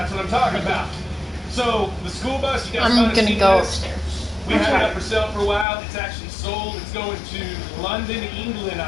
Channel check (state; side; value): drops out; right; at 5.7 s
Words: what I'm talking about. So, the school bus, you guys I'm might have gonna seen go this. upstairs. We had it up for sale for a while. It's actually sold. It's going to London, England,